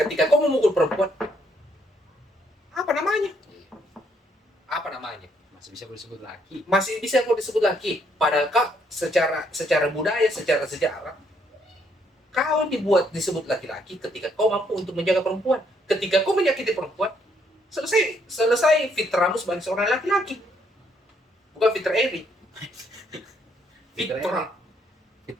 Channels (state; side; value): normal; both; correlation 0.71